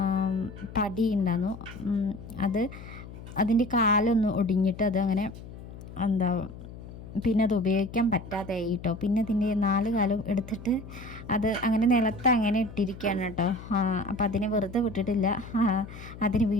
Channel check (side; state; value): left; noise; hum, 14 dB below the sound